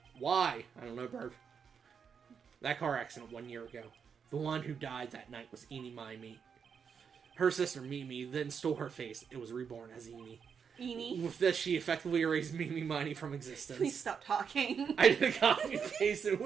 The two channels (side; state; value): left; quieter; 6.7 dB